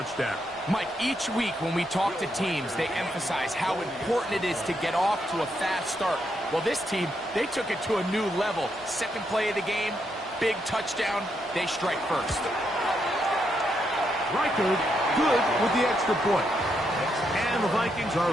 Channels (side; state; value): both; normal; correlation 0.79